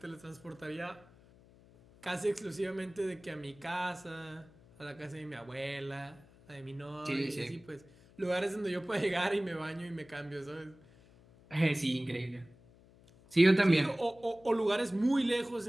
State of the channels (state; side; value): noise; left; hum, 25 dB below the sound